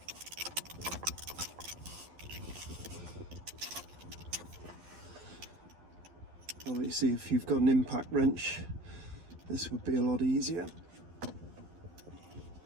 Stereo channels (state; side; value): late; left; 11 ms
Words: Obviously, if you've got an impact wrench, this would be a lot easier.